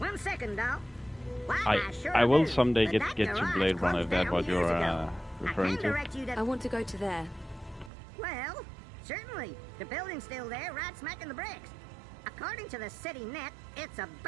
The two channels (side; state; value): left; drops out; at 7.9 s